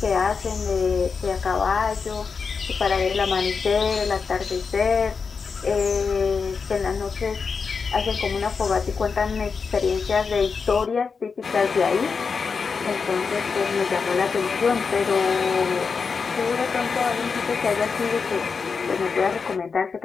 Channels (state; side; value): quieter; right; 5.3 dB